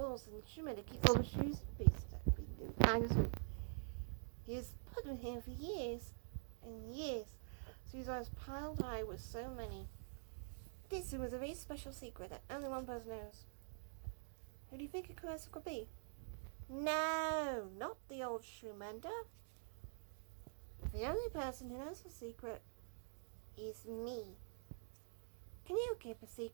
and the shoe mender keeps all the shoes and boots that have been behind his room. He has put them here for years and years, so he's always piled high with so many. This room is a very special secret that only one person knows. Who do you think it could be? No, not the old shoe mender. The only person who knows the secret is me. Can you keep a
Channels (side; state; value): left; silent; digital silence